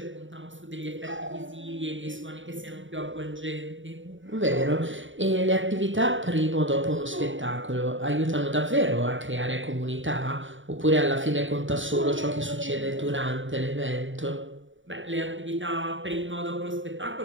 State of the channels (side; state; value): left; late; 0.56 ms